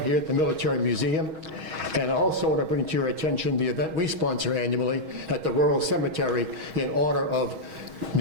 here at the Military Museum. And I also want to bring to your attention the event we sponsor annually at the Rural Cemetery in honor of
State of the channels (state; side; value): late; left; 6.3 ms